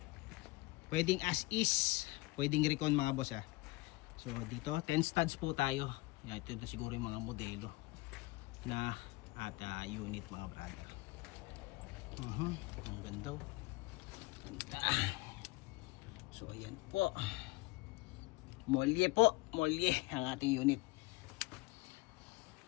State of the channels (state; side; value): quieter; right; 22.3 dB